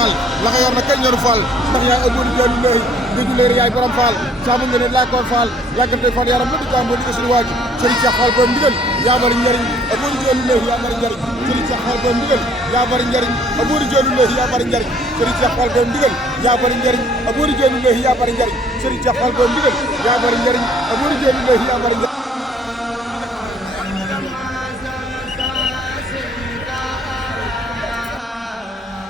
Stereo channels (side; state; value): both; normal; correlation 0.59